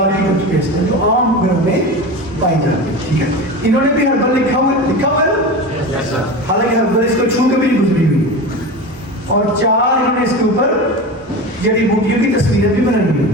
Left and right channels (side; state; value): both; normal; correlation 0.28